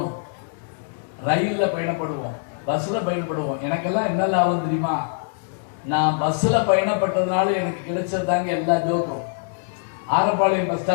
ரயில்ல பயணப்படுவோம், பஸ்ல பயணப்படுவோம். எனக்கெல்லாம் என்ன லாபம் தெரியுமா? நான் பஸ்ல பயணப்பட்டதுனால எனக்கு கிடைச்சதாங்க எல்லா ஜோக்கும். ஆரப்பாளையம் பஸ்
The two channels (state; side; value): silent; right; digital silence